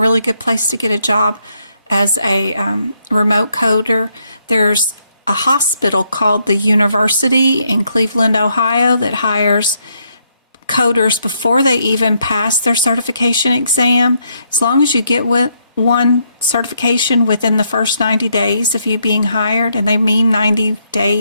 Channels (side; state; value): both; inverted; correlation -0.75